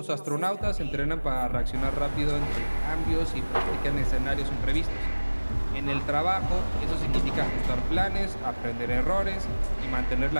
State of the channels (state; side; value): inverted; both; correlation -1.00